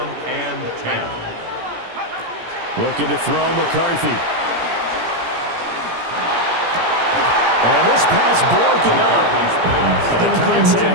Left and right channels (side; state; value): left; late; 17 ms